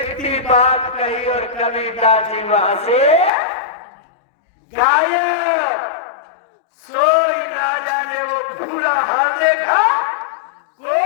बात कही और कबीरदास जी वहां से गायब। सोई राजा ने वो भूरा हाथ देखा,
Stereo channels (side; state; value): right; drops out; at 3.3 s